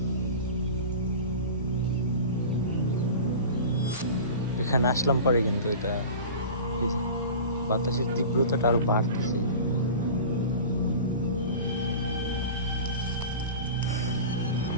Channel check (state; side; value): inverted; both; correlation -0.35